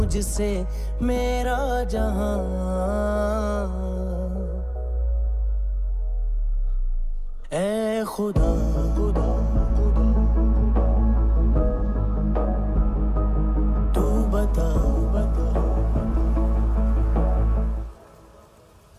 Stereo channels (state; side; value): identical; both; correlation 1.00